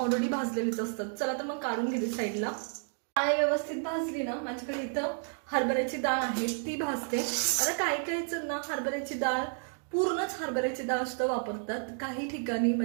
भाजलेलेच असतात. चला तर मग काढून घेते साईडला. डाळ व्यवस्थित भाजली ना, माझ्याकडे इथं हरभऱ्याची डाळ आहे ती भाजते. आता काही जण ना हरभऱ्याची डाळ पूर्णच हरभऱ्याची डाळ सुद्धा वापरतात. काही ठिकाणी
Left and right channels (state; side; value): silent; left; 57 dB below the other